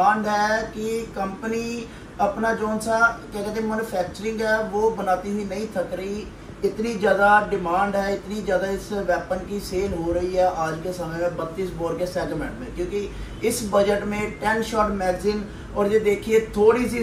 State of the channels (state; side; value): identical; both; correlation 1.00